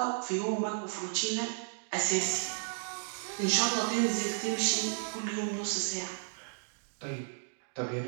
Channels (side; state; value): left; silent; digital silence